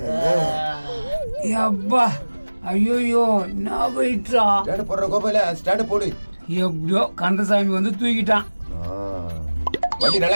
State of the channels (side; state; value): both; inverted; correlation -1.00